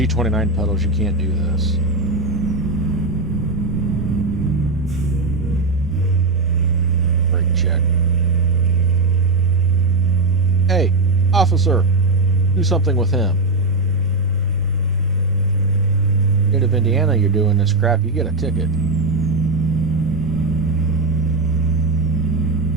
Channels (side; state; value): left; quieter; 3.2 dB